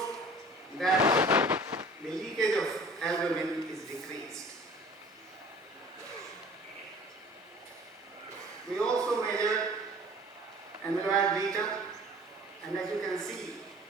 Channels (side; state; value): both; normal; correlation 0.46